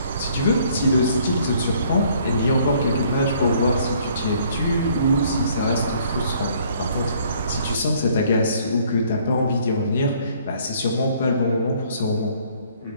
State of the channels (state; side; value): inverted; both; correlation -0.61